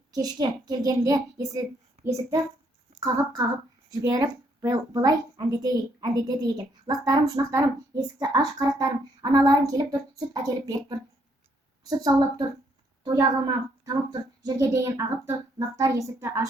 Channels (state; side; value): normal; both; correlation 0.71